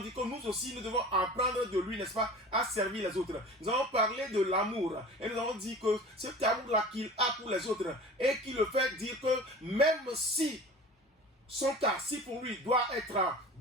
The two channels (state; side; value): normal; both; correlation 0.39